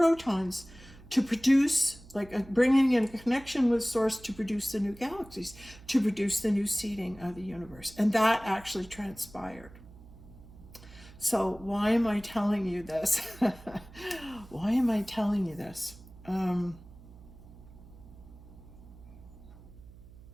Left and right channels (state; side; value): noise; right; hum, 20 dB below the sound